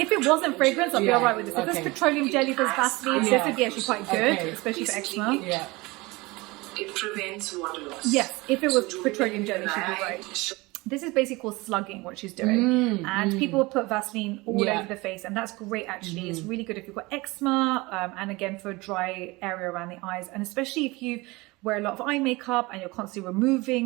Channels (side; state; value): left; quieter; 23.0 dB